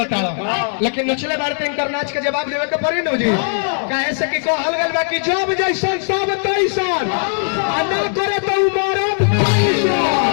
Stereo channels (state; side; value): silent; right; digital silence